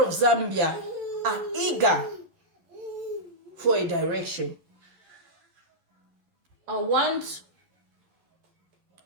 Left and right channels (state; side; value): late; left; 11 ms